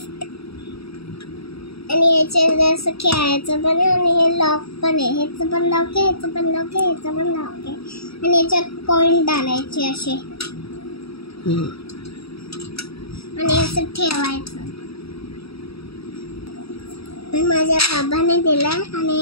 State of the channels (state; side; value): late; right; 0.77 ms